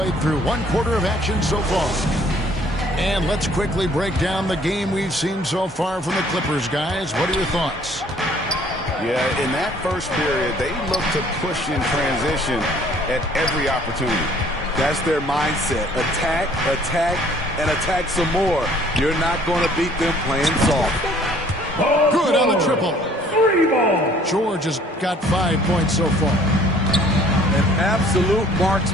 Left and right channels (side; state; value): both; normal; correlation 0.57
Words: through 1 quarter of action so far. And let's quickly break down the game we've seen so far from the Clippers, guys. What are your thoughts? Yeah, in that first period, they looked to push in transition at every opportunity. That's their mindset. Attack, attack, and attack some more. You're not going to beat them playing soft. Good on the triple. 3 ball. George has got 5 points so far. An absolute